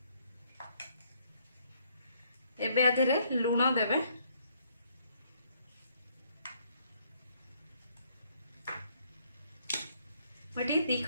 एबे आधेरे लूण देबे। मटी 2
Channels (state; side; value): inverted; both; correlation -0.67